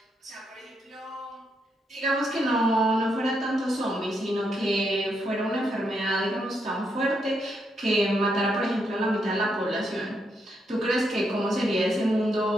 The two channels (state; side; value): normal; both; correlation 0.79